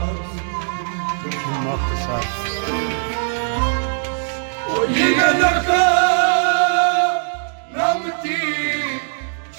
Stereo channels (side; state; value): left; silent; 62 dB below the other